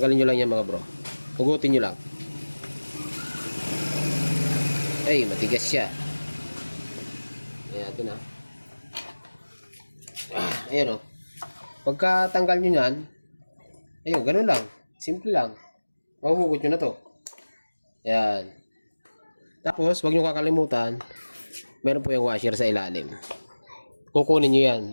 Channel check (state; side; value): inverted; both; correlation -1.00